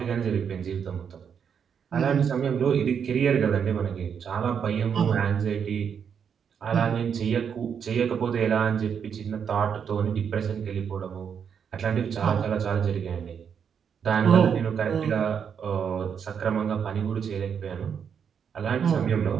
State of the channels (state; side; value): quieter; left; 7.3 dB